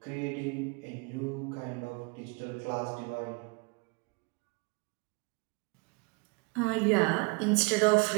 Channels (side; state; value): left; quieter; 30.8 dB